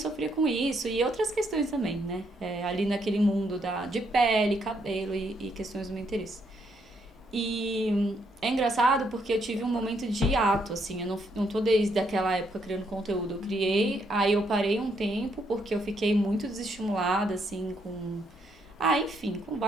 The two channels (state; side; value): normal; both; correlation 0.74